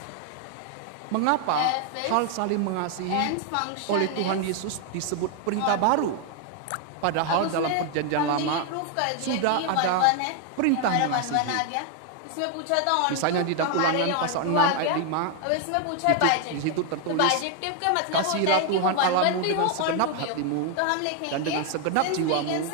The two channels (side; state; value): both; different; correlation 0.00